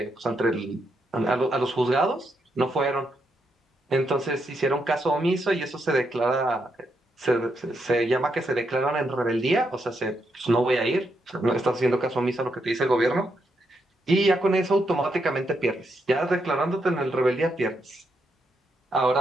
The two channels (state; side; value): normal; both; correlation 0.80